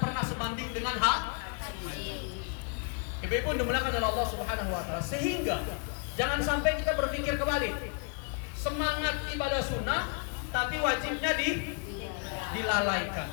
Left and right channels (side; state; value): right; quieter; 38.6 dB